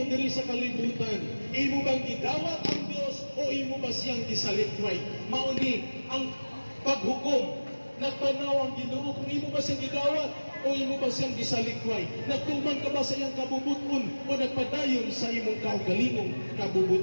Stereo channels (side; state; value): both; inverted; correlation -1.00